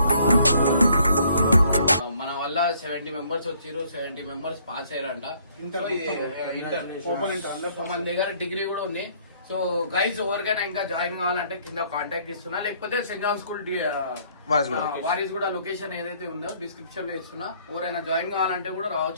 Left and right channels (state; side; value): inverted; both; correlation -0.63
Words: మన వల్ల 70 మెంబర్స్ వచ్చారు. 70 మెంబర్స్ పాస్ అయ్యారంట. ఇంటర్ ఓపెన్ ఇంటర్ అందరు. మన దగ్గర డిగ్రీ కూడా ఉంది. సో గైస్ ఎవరికైనా ఇంకా జాయిన్ కావాలంటే కింద కాంటాక్ట్ ఇస్తున్నా, లేకపోతే సెంట్ జాన్ స్కూల్ వారీస్ కూడా లొకేషన్ ఏదైతే ఉందో డిస్క్రిప్షన్ లో ఇస్తున్నా. ఎవరైనా జాయిన్ కావాలంటే కూడా